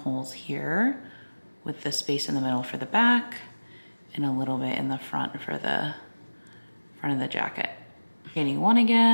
here with the space in the middle for the back and a little bit in the front for the front of the jacket. Chaining 1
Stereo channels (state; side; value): inverted; both; correlation -1.00